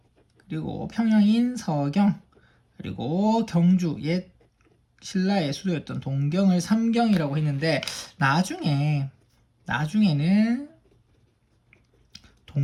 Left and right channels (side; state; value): both; identical; correlation 1.00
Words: 그리고 평양인 서경, 그리고 경주, 옛 신라의 수도였던 동경을 삼경이라고 했는데, 나중에는